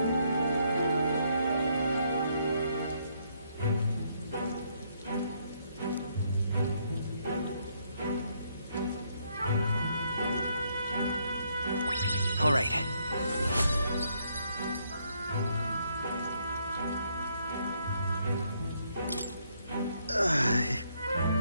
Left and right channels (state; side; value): inverted; both; correlation -0.72